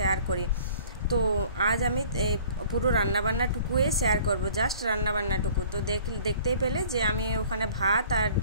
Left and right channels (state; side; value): inverted; both; correlation -0.50